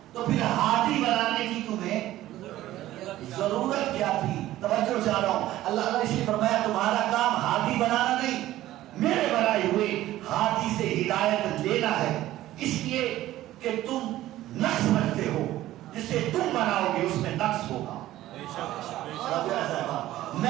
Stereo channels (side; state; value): left; quieter; 14.8 dB